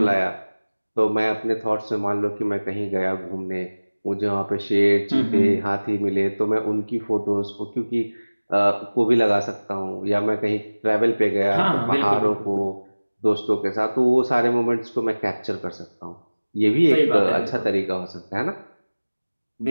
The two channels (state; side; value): inverted; both; correlation -1.00